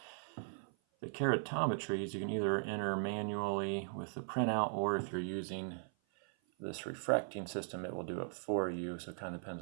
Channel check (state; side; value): silent; left; 52 dB below the other